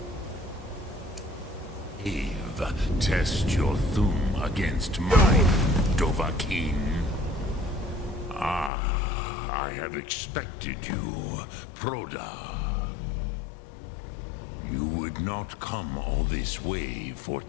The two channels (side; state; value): right; drops out; at 8.7 s